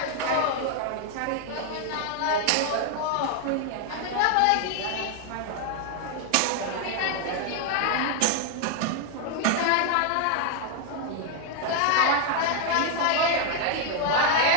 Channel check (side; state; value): both; different; correlation 0.00